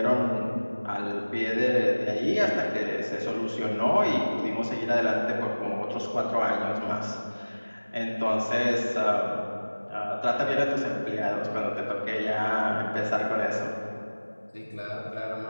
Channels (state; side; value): inverted; both; correlation -1.00